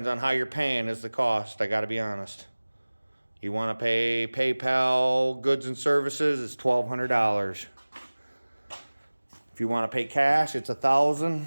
on how you're paying is the cost, I gotta be honest. You wanna pay PayPal goods and services, it's $1,200. If you wanna pay cash, it's $1,000.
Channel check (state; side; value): inverted; both; correlation -1.00